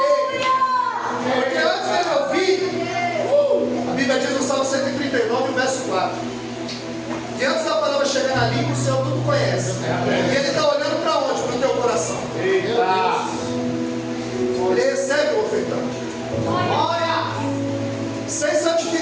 Porque antes dele ouvir, a Bíblia diz no Salmo 139, verso 4, que antes da palavra chegar na língua, o Senhor tudo conhece. E Ele está olhando para onde? Para o teu coração. Ele recebe o ofertante. Sem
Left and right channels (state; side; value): identical; both; correlation 1.00